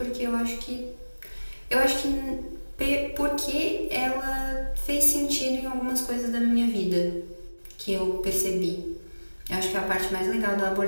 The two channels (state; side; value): inverted; both; correlation -1.00